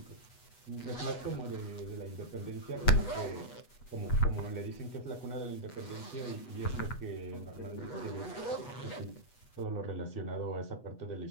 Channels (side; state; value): right; late; 8.1 ms